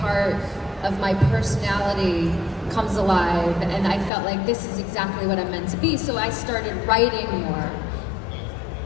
of my personality comes alive, and I felt like this is exactly what I'm meant to be. So I started writing more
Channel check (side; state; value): right; drops out; at 4.1 s